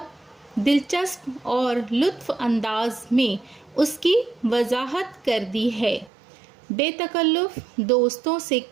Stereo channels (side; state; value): left; drops out; at 6.1 s